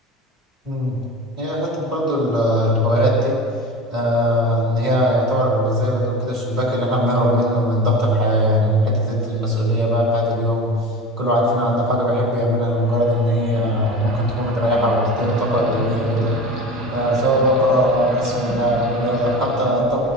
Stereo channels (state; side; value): normal; both; correlation 0.33